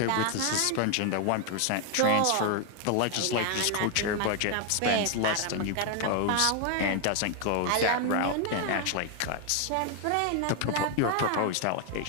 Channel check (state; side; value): different; both; correlation 0.01